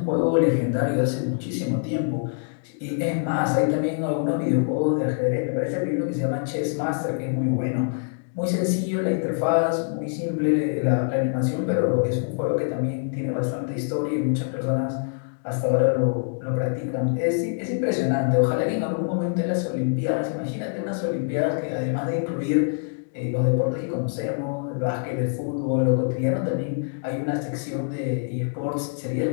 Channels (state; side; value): silent; right; digital silence